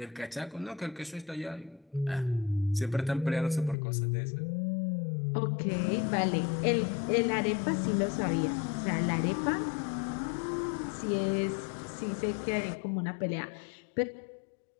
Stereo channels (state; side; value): drops out; right; at 3.8 s